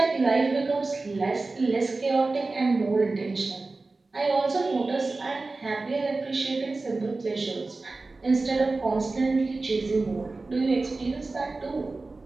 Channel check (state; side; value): quieter; left; 3.5 dB